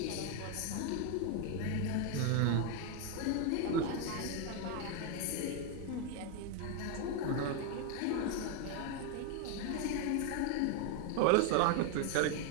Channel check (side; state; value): both; different; correlation 0.01